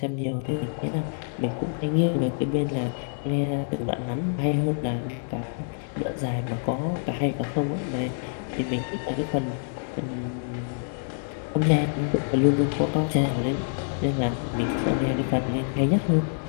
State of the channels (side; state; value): right; silent; 60 dB below the other